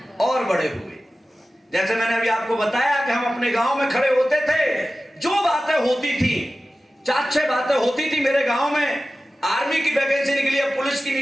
और बड़े हुए, जैसे मैंने अभी आपको बताया कि हम अपने गांव में खड़े होते थे, जो बातें होती थी, 4-6 बातें होती थी मेरे गांव में। आर्मी की वैकेंसी निकली है, पुलिस की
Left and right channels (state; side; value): normal; both; correlation 0.95